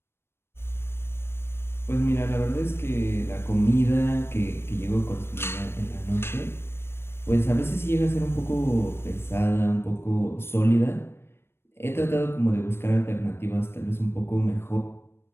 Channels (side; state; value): right; late; 0.12 ms